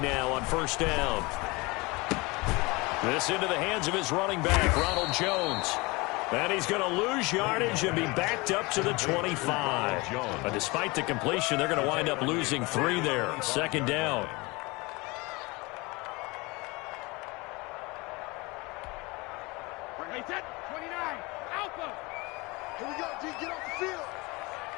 on first down. This into the hands of his running back, Ronald Jones. And he's going to lose yardage and be backed up to the 25. But despite the completion, they're going to wind up losing 3 there. 2nd down. Here we go, G, get off the field.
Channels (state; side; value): quieter; right; 24.8 dB